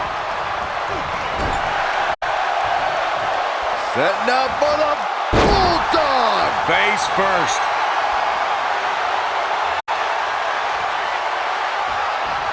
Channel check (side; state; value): both; identical; correlation 1.00